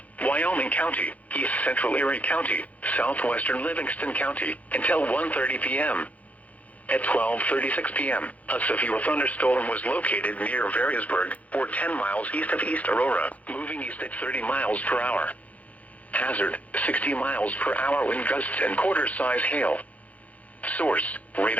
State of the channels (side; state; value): right; late; 0.070 ms